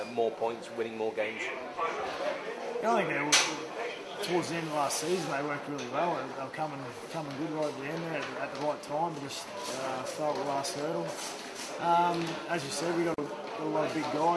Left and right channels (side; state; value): both; identical; correlation 1.00